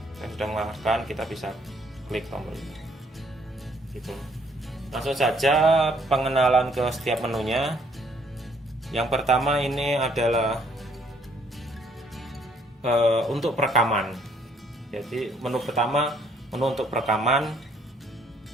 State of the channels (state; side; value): normal; both; correlation 0.65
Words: Yang sudah mengarahkan, kita bisa klik tombol ini. Gitu. Langsung saja pengenalan ke setiap menunya. Yang pertama ini adalah untuk perekaman. Jadi menu pertama, menu untuk perekaman.